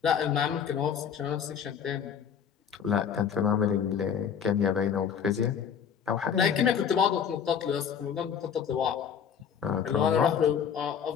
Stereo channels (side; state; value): right; quieter; 7.7 dB